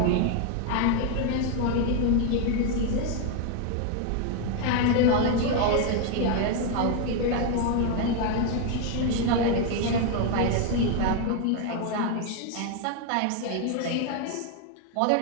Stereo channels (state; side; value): different; both; correlation 0.01